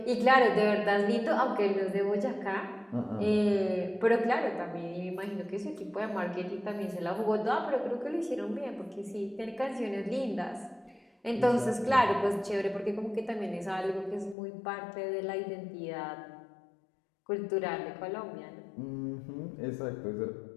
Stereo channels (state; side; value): drops out; right; at 14.4 s